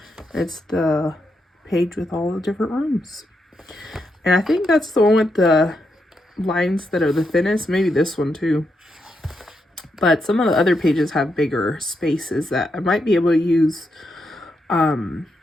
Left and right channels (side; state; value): both; normal; correlation 0.82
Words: It's the page with all the different rooms. And I think that's the one with the lines that are the thinnest. Maybe this one too. But some of the other pages have bigger spaces that I might be able to use